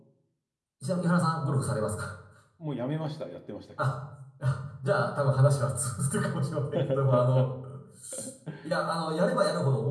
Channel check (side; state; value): both; identical; correlation 1.00